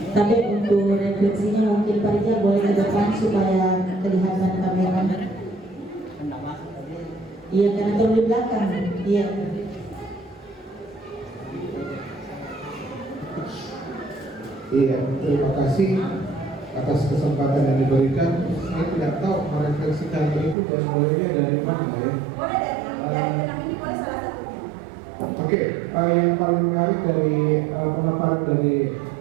Tapi untuk refleksinya mungkin Pak Rijal boleh ke depan supaya kelihatan kamera. Iya, karena terlalu di belakang. Iya. Iya, terima kasih atas kesempatan yang diberikan. Saya tidak tahu merefleksikan itu dan mulainya dari mana ya. Boleh dari film ini, boleh salah satunya. Oke, yang paling menarik dari pemaparan dari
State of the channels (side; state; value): left; drops out; at 20.6 s